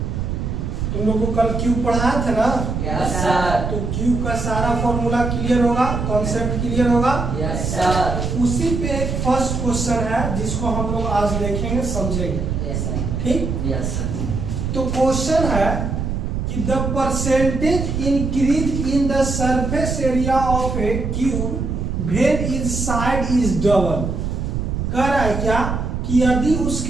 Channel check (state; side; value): noise; right; rumble, 2 dB below the sound